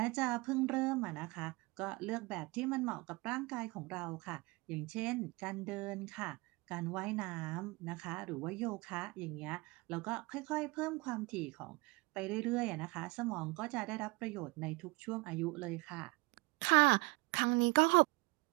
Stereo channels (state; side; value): quieter; left; 24.8 dB